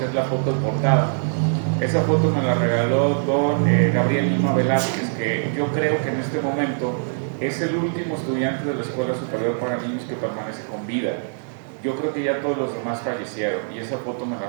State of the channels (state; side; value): silent; left; digital silence